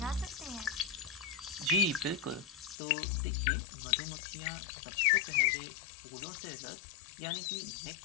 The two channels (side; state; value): right; drops out; at 2.8 s